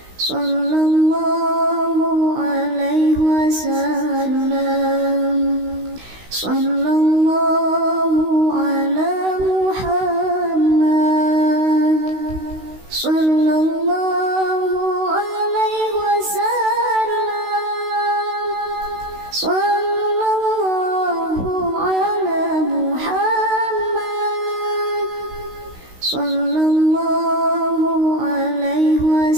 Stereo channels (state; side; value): late; left; 16 ms